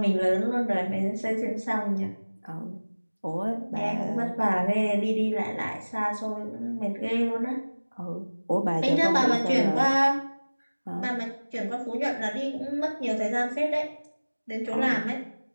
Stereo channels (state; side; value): inverted; both; correlation -1.00